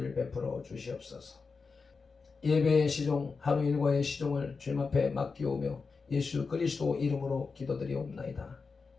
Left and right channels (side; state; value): right; quieter; 4.7 dB